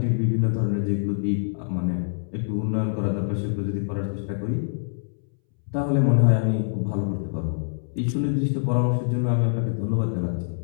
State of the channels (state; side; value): silent; right; 62 dB below the other